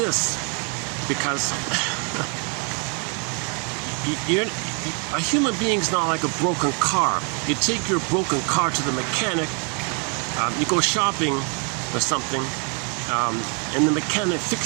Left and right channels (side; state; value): left; quieter; 37.9 dB